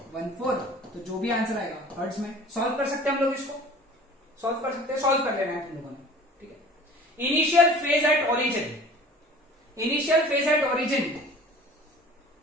तो जो भी आंसर आएगा हर्ट्ज में। सॉल्व कर सकते हैं हम लोग, इसको सॉल्व कर सकते हैं, सॉल्व कर लेना है तुम लोगों ने, ठीक है। Initial phase at origin, initial phase at origin,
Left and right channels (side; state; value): both; normal; correlation 0.45